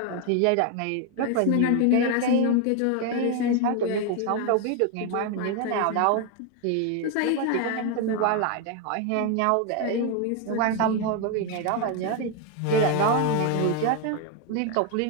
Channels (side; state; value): both; different; correlation 0.01